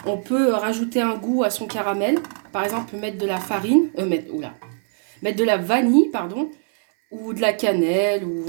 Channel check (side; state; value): left; silent; 60 dB below the other